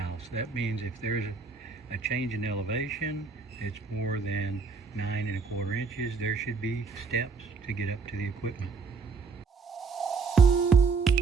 That means if there's a change in elevation, it's more than 9 1/4 inches, there should be steps to get up to the equipment.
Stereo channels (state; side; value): quieter; left; 4.7 dB